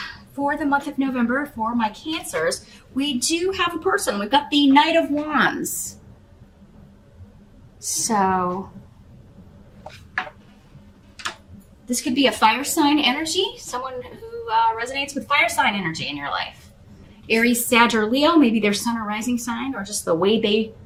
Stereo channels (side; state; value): both; identical; correlation 1.00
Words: for the month of November for my Cancers, we do have a person. We've got the Knight of Wands. So this could be a fire sign energy, someone who resonates with fire sign energy in your life. Aries, Sag, or Leo, maybe their sun or rising sign, or just the way they